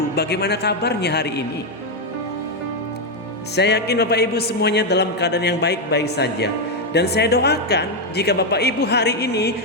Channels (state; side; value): normal; both; correlation 0.04